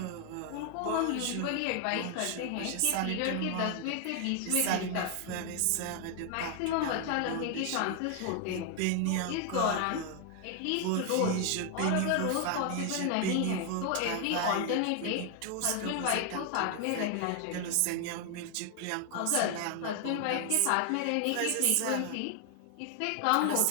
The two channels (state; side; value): different; both; correlation 0.00